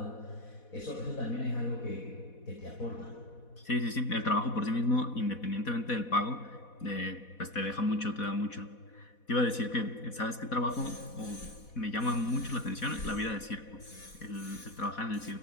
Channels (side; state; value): right; late; 4.1 ms